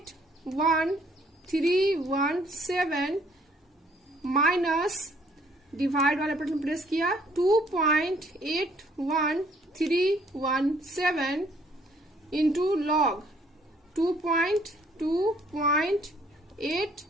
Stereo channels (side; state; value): both; normal; correlation 0.63